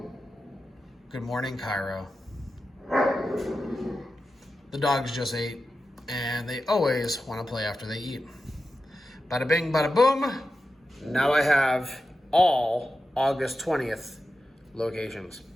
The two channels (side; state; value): both; normal; correlation 0.91